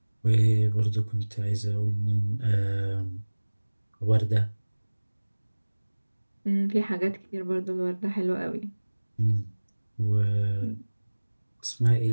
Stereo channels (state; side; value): inverted; both; correlation -1.00